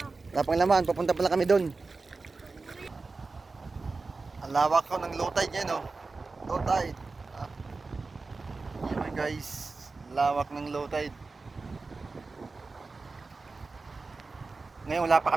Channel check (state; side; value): quieter; left; 3.9 dB